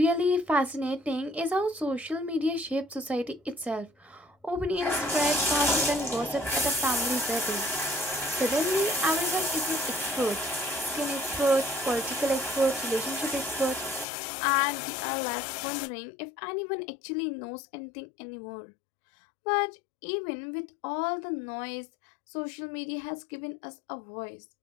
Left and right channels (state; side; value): drops out; right; at 14.1 s